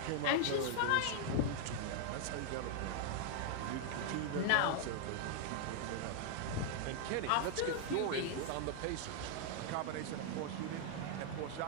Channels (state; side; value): different; both; correlation 0.00